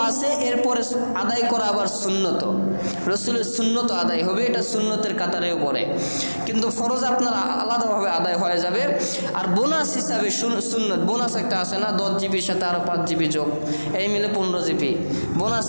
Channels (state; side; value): inverted; both; correlation -1.00